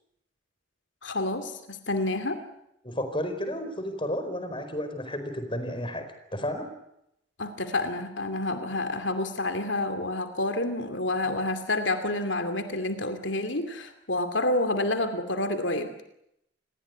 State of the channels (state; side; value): normal; both; correlation -0.13